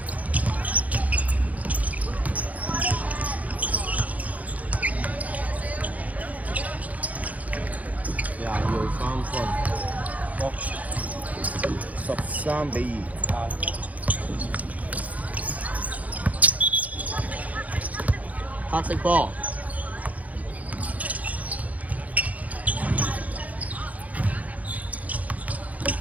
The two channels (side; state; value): left; late; 0.073 ms